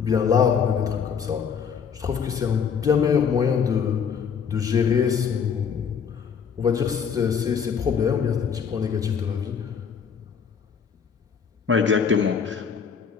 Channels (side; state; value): right; quieter; 6.8 dB